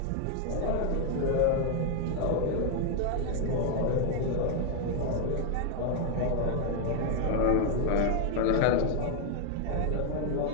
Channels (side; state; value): both; different; correlation 0.00